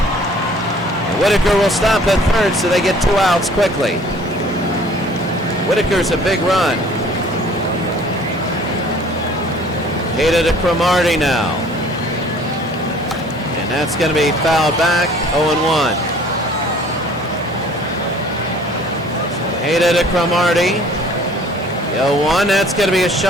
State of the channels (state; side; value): normal; both; correlation 0.53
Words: And Whitaker will stop at third, so they get 2 outs quickly. Whitaker's a big run. Hated to Cromartie now. And that's going to be fouled back, 0-1. Hated to Cromartie. 0-1, that's going to be a